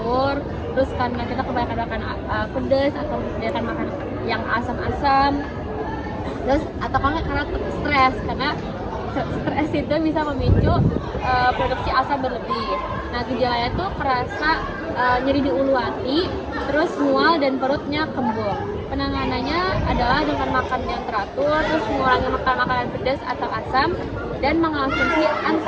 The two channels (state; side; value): identical; both; correlation 1.00